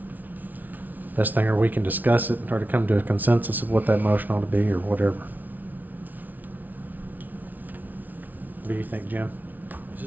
best thing, or we can discuss it and try to come to a consensus of what that motion ought to be, or whatever. What do you think, Jim? Is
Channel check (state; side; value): late; left; 0.080 ms